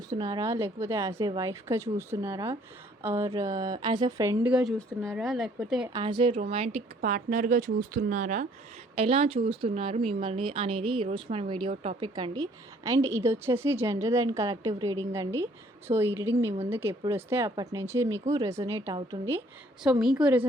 లేకపోతే యాజ్ ఎ వైఫ్‌గా చూస్తున్నారా? ఆర్ యాజ్ ఎ ఫ్రెండ్‌గా చూస్తున్నారా? లేకపోతే యాజ్ ఎ రొమాంటిక్ పార్ట్నర్‌గా చూస్తున్నారా? ఎలా చూస్తున్నారు మిమ్మల్ని అనేది ఈరోజు మన వీడియో టాపిక్ అండి. అండ్ ఇదొచ్చేసి జనరల్ అండ్ కలెక్టివ్ రీడింగ్ అండి. సో, ఈ రీడింగ్ మీ ముందుకు ఎప్పుడొస్తే అప్పటి నుంచి మీకు రెజొనేట్ అవుతుంది. సో, మీకు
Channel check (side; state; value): both; normal; correlation 0.61